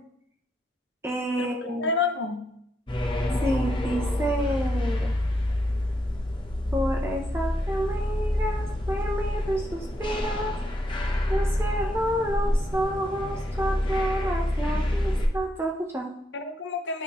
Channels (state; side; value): normal; both; correlation 0.80